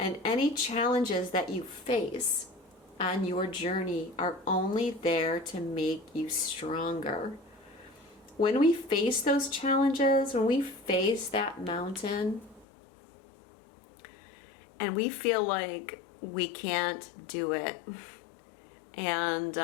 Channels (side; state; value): right; drops out; at 12.7 s